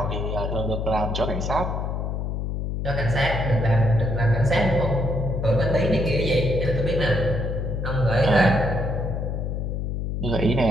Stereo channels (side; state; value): left; noise; hum, 2 dB below the sound